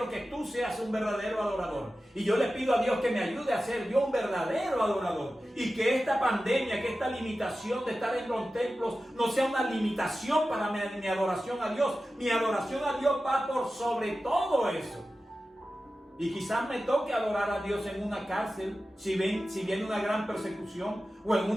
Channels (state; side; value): normal; both; correlation 0.94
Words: que tú seas un verdadero adorador, y yo le pido a Dios que me ayude a ser yo un verdadero adorador, y que esta pandemia, que esta limitación de estar en los templos no sea una limitación para mi adoración a Dios. Mi adoración a Dios va por sobre todo eso. Y quizás me toque adorar a Dios en una cárcel, si viene una gran persecución, o en